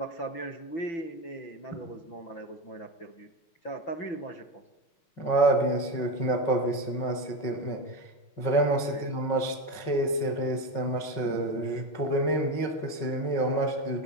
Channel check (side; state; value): right; late; 5.5 ms